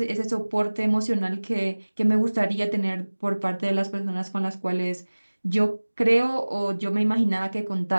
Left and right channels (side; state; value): both; inverted; correlation -1.00